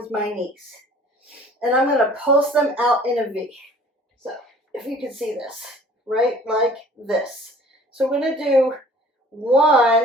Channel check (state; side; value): normal; both; correlation 0.51